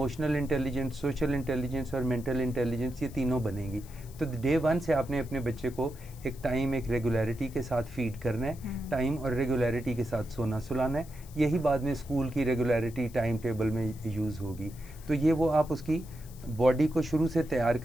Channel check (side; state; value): left; noise; hiss, 22 dB below the sound